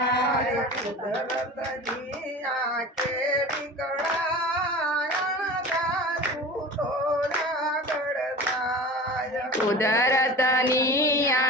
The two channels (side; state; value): both; normal; correlation 0.35